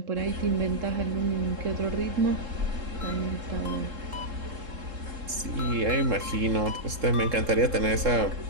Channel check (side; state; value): left; late; 3.7 ms